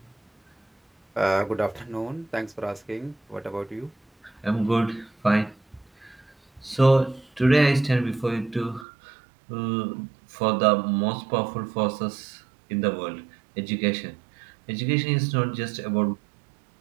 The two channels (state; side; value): drops out; left; at 8.8 s